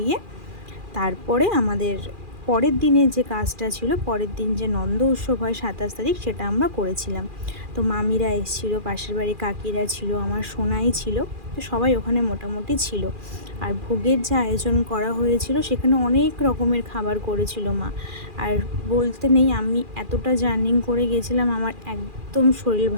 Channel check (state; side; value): late; left; 2.4 ms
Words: তারপরে আমাদের পরের দিনে যে কাজটা ছিল, পরের দিন যে নন্দ উৎসব হয় 27 তারিখ, সেটা আমরা করেছিলাম। তো মামিরা এসেছিলো, পাশের বাড়ি কাকিরা ছিল, আমার সোনাই ছিল, তো সবাই ওখানে মোটামুটি ছিল। আর ভোগের যে আয়োজন করা হয়েছিল সেখানে অনেক রকমের খাবার করেছিল মা। আর বলতে নেই, আমি এতটা জার্নিং করে গেছিলাম, আমার একদম শরীর